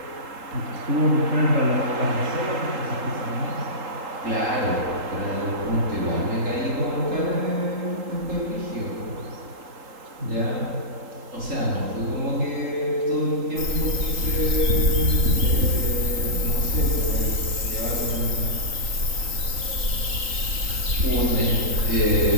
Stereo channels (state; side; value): late; left; 3.8 ms